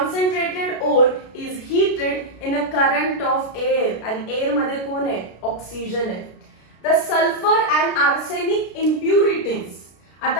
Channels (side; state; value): right; late; 33 ms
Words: ore is heated in a current of air, आणि एअर मध्ये कोण आहे, ऑक्सिजन आहे. The sulphur and arsenic impurities,